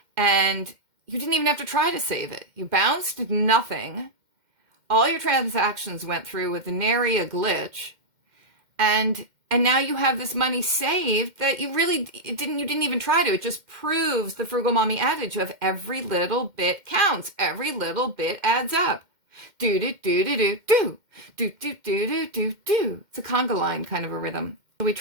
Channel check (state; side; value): late; left; 2.1 ms